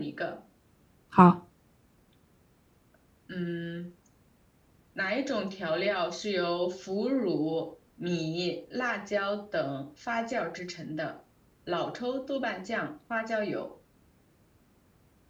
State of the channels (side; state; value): both; identical; correlation 1.00